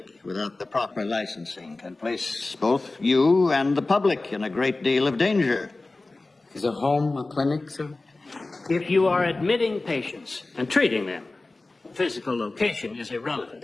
without the proper licensing can place both you and the public in a great deal of danger? Is a home a clinic, sir? If you are admitting patients and treating them, physical location is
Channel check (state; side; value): quieter; right; 3.2 dB